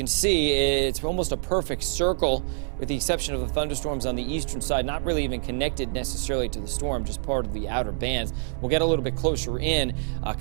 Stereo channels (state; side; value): silent; left; digital silence